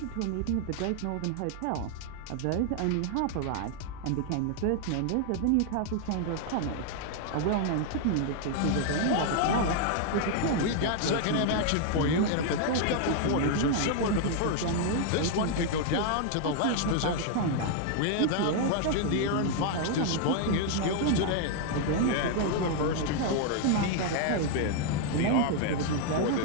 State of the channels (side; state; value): both; different; correlation 0.00